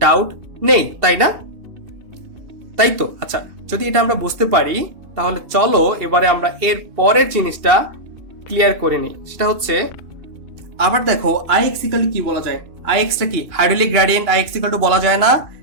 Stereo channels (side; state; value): left; late; 2.6 ms